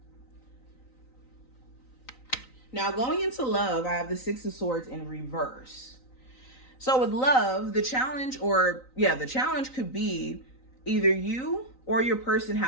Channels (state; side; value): late; right; 3.9 ms